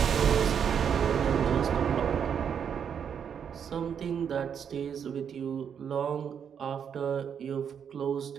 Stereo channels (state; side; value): quieter; left; 7.8 dB